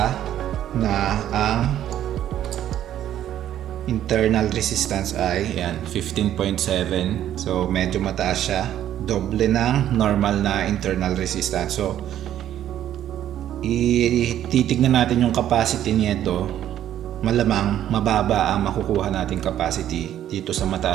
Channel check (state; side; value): quieter; left; 11.4 dB